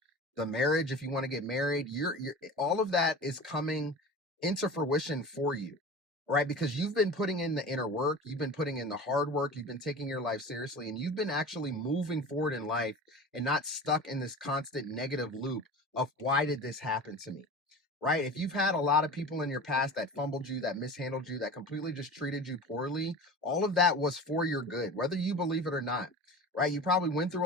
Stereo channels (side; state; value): both; normal; correlation 0.35